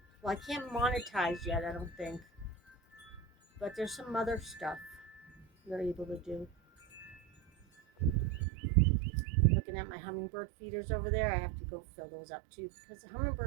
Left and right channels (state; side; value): drops out; left; at 8.5 s